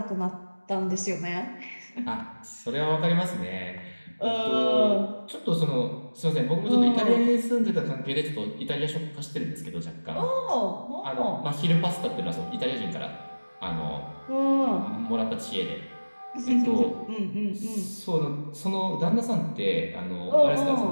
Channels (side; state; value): both; inverted; correlation -1.00